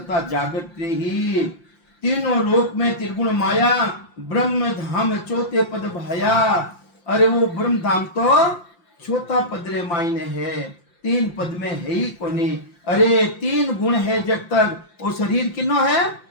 जागृत ही तीनों लोक में त्रिगुण माया ब्रह्म धाम चौथे पद भाया अरे वो ब्रह्म धाम तो चौथा पद रे मायने है तीन पद में है ही कोनी अरे तीन गुण है जब तक वो शरीर किनो है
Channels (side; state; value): right; late; 5.8 ms